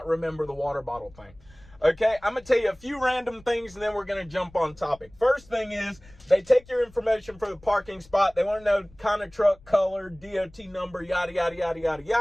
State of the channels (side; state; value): left; noise; rumble, 25 dB below the sound